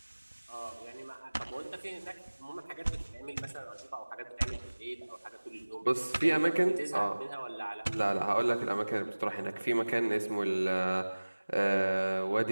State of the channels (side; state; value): both; inverted; correlation -1.00